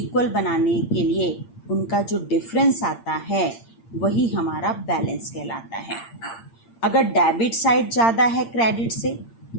बनाने के लिए उनका जो डिफरेंस आता है वही हमारा बैलेंस कहलाता है. अगर डेबिट साइड ज़्यादा है क्रेडिट से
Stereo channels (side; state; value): right; late; 8.7 ms